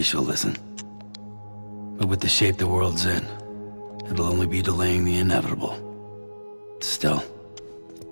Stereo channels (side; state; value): both; inverted; correlation -1.00